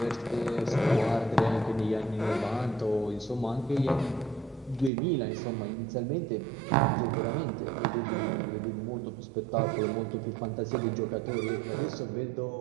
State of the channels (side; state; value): left; drops out; at 4.9 s